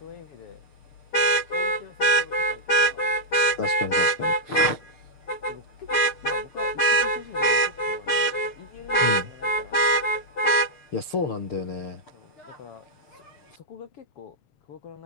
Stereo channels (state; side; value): late; right; 6.7 ms